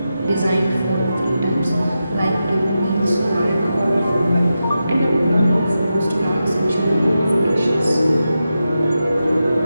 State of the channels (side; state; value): both; inverted; correlation -0.90